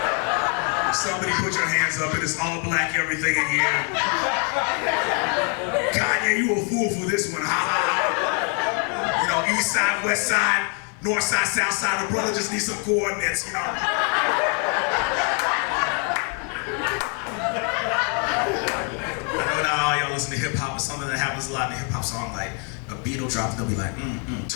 Somebody put your hands up, it is all black everything in here. Kanye, you a fool for this one, ha ha ha. You know, east side, west side, north side, south side, the brother just needs some coordinates, you know. I know y'all listen to hip hop, it's something that happens a lot in a hip hop song, like a beat will drop, they'll be like,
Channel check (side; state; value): right; quieter; 38.8 dB